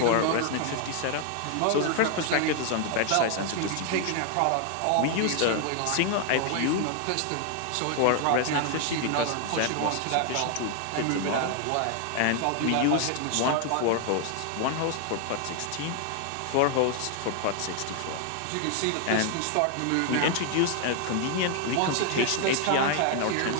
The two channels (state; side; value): different; both; correlation 0.00